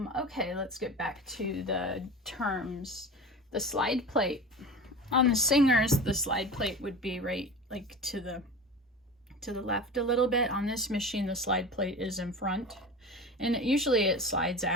Okay, let's get back to the terms. The slide plate. On the Singers, the slide plate would be right like to the left a little bit. On this machine, the slide plate is in front, and usually it slides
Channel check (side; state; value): both; normal; correlation 0.32